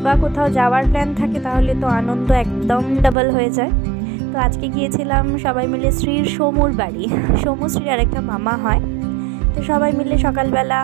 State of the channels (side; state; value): left; drops out; at 3.2 s